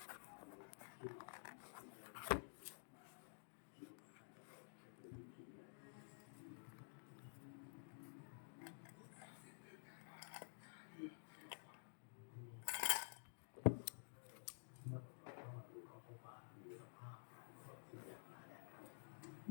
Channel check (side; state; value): right; silent; digital silence